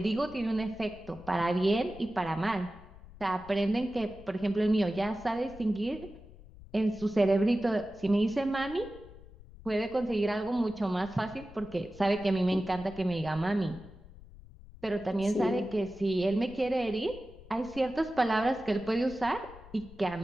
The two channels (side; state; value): left; noise; rumble, 19 dB below the sound